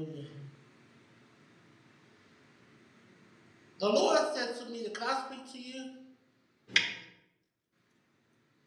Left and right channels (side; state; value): both; identical; correlation 1.00